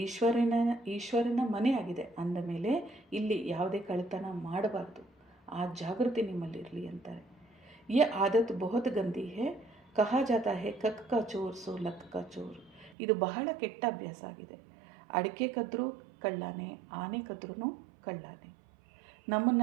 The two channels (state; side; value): drops out; left; at 13.0 s